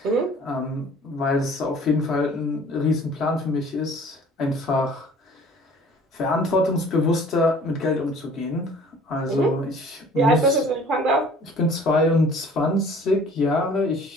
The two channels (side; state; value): both; normal; correlation 0.50